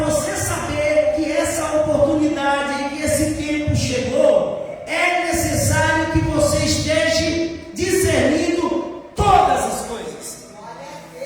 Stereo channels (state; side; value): identical; both; correlation 1.00